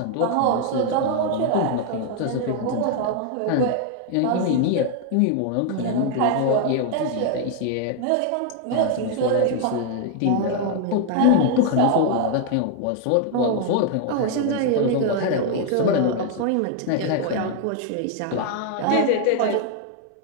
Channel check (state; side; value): different; both; correlation 0.00